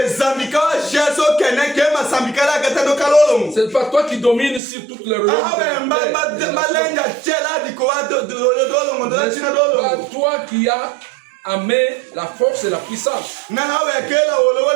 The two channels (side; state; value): left; drops out; at 4.6 s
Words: C'est pas toi qui domines sur toute le royaume. C'est pas toi qui as amené la force et la puissance.